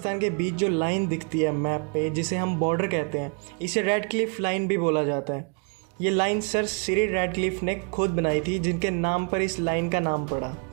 के बीच जो लाइन दिखती है मैप पे, जिसे हम बॉर्डर कहते हैं, इसे रेड क्लिफ लाइन भी बोला जाता है। ये लाइन सर सिरिल रैडक्लिफ ने खुद बनाई थी, जिनके नाम पर इस लाइन का नाम पड़ा।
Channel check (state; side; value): quieter; left; 34.9 dB